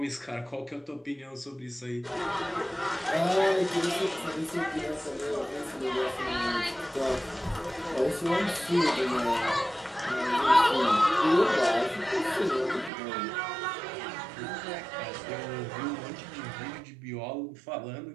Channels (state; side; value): drops out; left; at 12.9 s